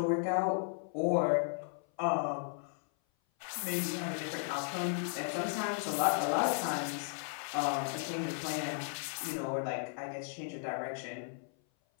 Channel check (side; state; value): right; silent; 54 dB below the other